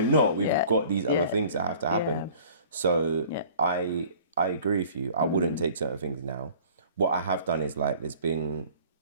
We've got these other things that have to happen. Yeah. So I agree with you. I wouldn't take certain things now. What I have done is like there's been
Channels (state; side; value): inverted; both; correlation -0.49